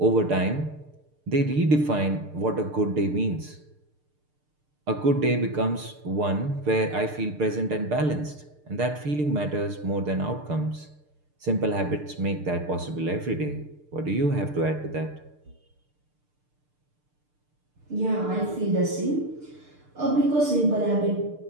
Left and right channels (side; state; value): left; late; 6.7 ms